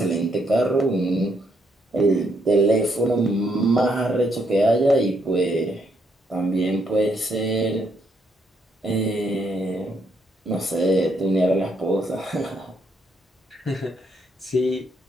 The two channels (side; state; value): both; normal; correlation 0.74